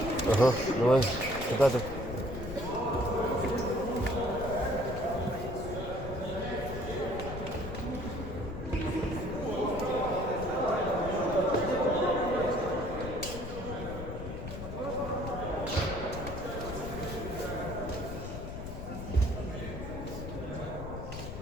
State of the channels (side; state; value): left; noise; rumble, 8 dB below the sound